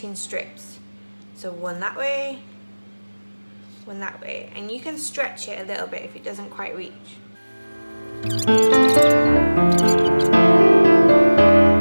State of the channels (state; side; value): inverted; both; correlation -1.00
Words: strips. So one that way, one that way, and you can stretch it a little bit if it doesn't quite reach.